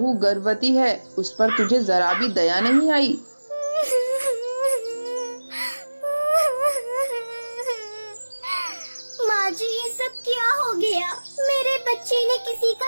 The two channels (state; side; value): inverted; both; correlation -1.00